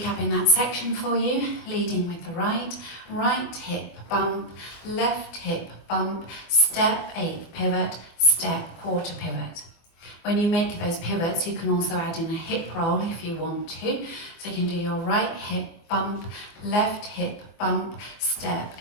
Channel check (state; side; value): late; right; 24 ms